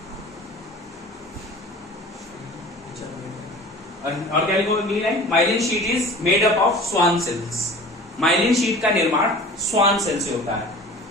और क्या लिखोगे अगली line? Myelin sheath is made up of Schwann cells. Myelin sheath का निर्माण स्वान सेल से होता है।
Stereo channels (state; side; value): normal; both; correlation 0.42